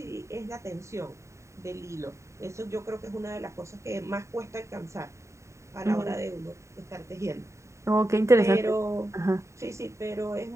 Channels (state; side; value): late; left; 0.14 ms